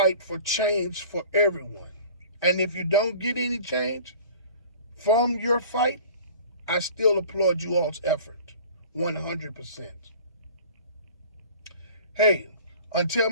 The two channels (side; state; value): both; inverted; correlation -0.45